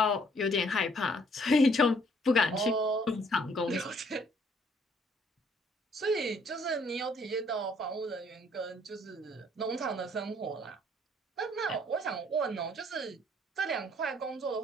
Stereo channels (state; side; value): normal; both; correlation 0.63